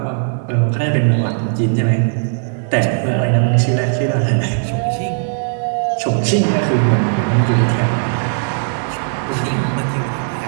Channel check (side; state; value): left; silent; 67 dB below the other